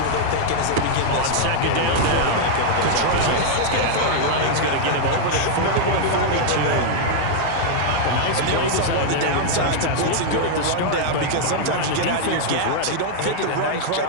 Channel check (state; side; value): different; both; correlation -0.01